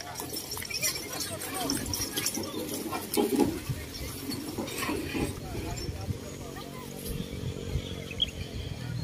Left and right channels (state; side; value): identical; both; correlation 1.00